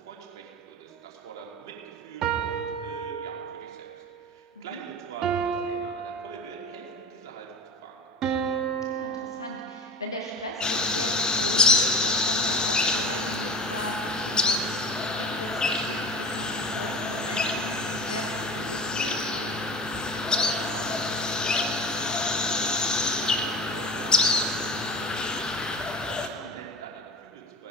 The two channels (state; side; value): normal; both; correlation 0.34